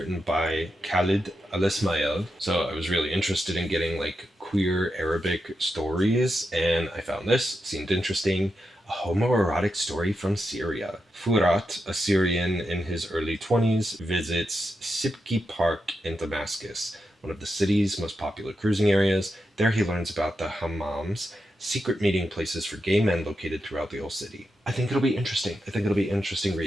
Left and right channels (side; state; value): both; normal; correlation 0.87